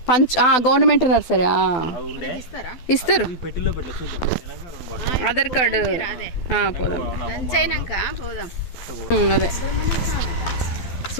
గవర్నమెంట్ నర్సరీ అవి ఉండే ఇస్తారు. పెట్టిలో పెట్టలే చూద్దాం. ఆధార్ కార్డు పోదాం పోదాం. అదే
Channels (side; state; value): right; late; 12 ms